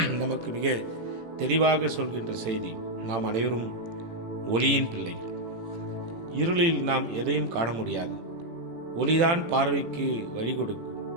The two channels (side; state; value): left; late; 18 ms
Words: நமக்கு மிக தெளிவாக சொல்கின்ற செய்தி. நாம் அனைவரும் ஒளியின் பிள்ளைகள். இருளில் நாம் எதையும் காண முடியாது. ஒளிதான் பார்வைக்கு வழி கொடுக்கும்.